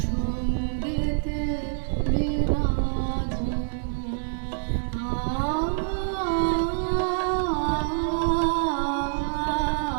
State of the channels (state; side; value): silent; left; digital silence